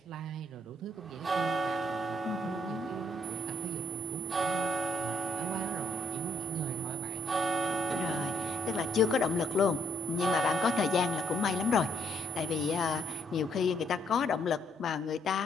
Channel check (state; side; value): normal; both; correlation 0.69